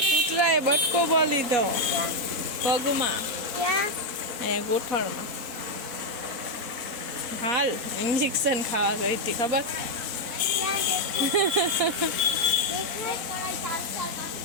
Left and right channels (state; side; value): late; left; 4.1 ms